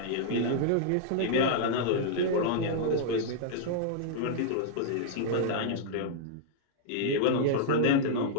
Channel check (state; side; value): different; both; correlation -0.02